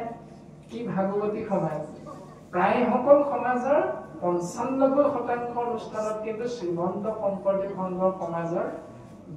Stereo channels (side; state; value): both; identical; correlation 1.00